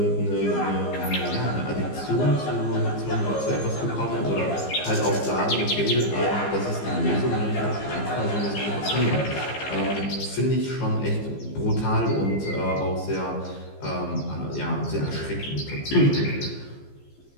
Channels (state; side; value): late; right; 15 ms